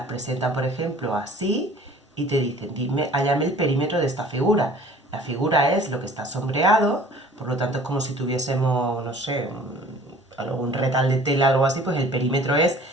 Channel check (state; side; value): normal; both; correlation 0.49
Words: presentan, por ejemplo, así, y te dicen, dime, hállame el perímetro de esta figura. La figura es lo que está sombreado, por lo tanto es como si tuviésemos, no sé, un retal de tela o algo así, pues el perímetro es